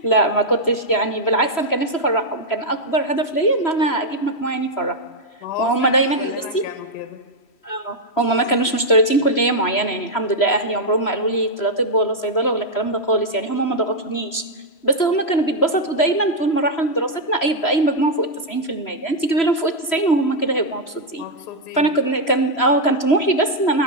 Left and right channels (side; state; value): right; late; 3.0 ms